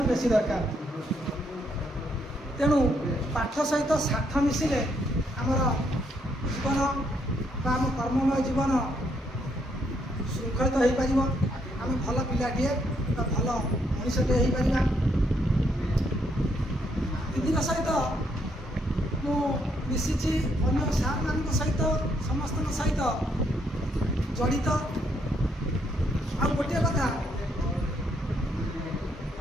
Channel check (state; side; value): normal; both; correlation 0.73